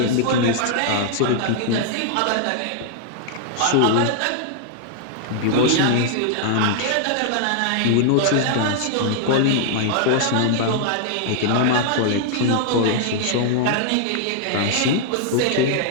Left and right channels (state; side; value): different; both; correlation -0.01